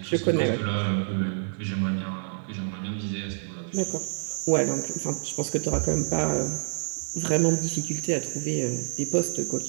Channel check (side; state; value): left; silent; digital silence